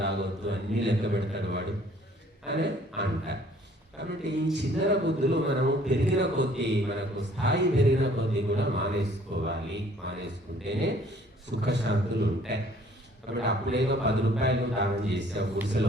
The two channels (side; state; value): both; normal; correlation 0.57